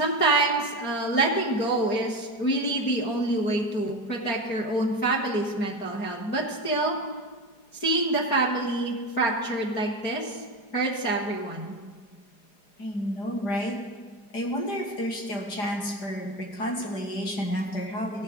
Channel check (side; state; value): right; late; 4.9 ms